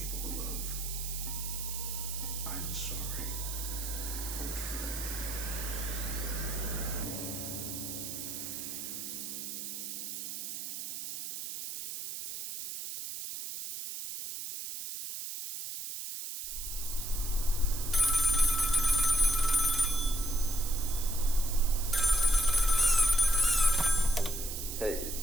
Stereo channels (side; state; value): right; noise; hiss, 6 dB below the sound